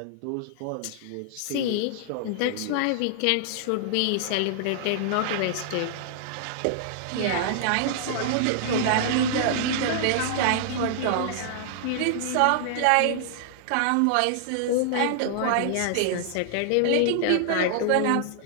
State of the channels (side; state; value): both; different; correlation -0.01